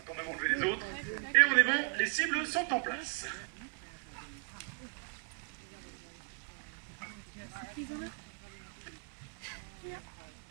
quand même enlever les autres. Et on est bon, les cibles sont en place.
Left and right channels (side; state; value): left; quieter; 34.9 dB